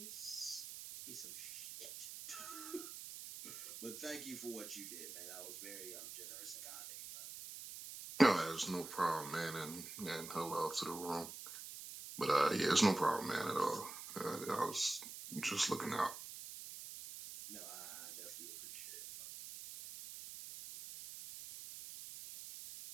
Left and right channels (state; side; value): noise; right; hiss, 10 dB below the sound